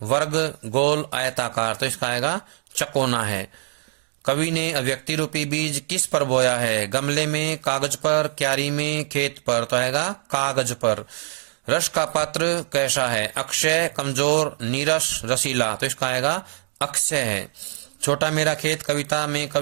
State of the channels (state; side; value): silent; left; digital silence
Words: वर्ग, गोल, आयताकार। तो इसका आएगा चकोना है। कवि ने अभिव्यक्ति रूपी बीज किस पर बोया है? गमले में, कागज पर, क्यारी में, खेत पर। तो आएगा कागज पर। रस का पात्र कैसा है? अक्षय, कमजोर, नीरस, रसीला। तो इसका आएगा अक्षय है। छोटा मेरा खेत कविता में